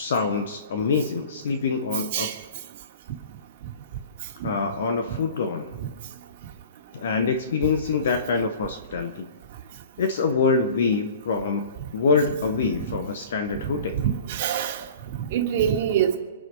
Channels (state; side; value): inverted; both; correlation -0.41